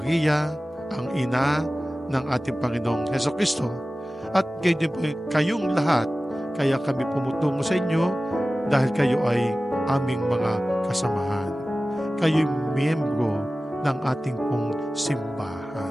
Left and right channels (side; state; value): both; normal; correlation 0.96